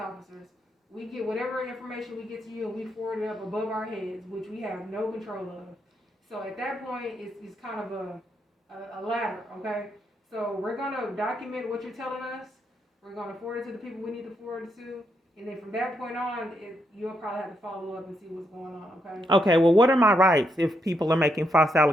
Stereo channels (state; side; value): normal; both; correlation 0.79